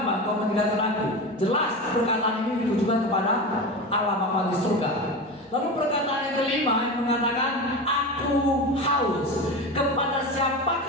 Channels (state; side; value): normal; both; correlation 0.25